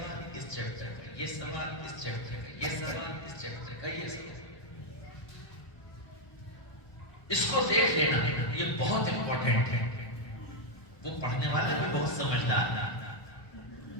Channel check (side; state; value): right; late; 1.2 ms